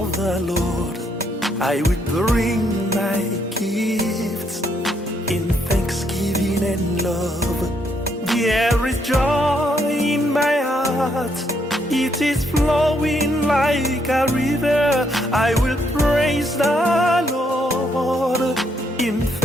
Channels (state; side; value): normal; both; correlation 0.74